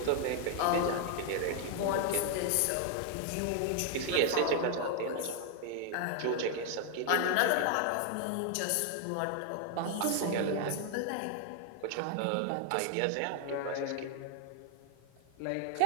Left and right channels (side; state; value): both; different; correlation 0.00